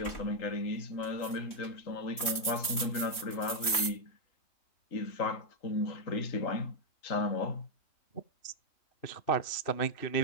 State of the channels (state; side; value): late; right; 3.1 ms